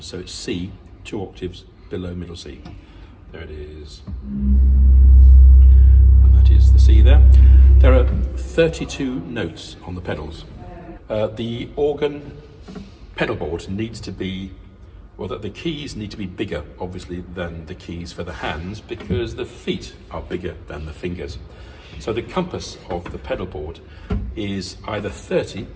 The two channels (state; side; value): identical; both; correlation 1.00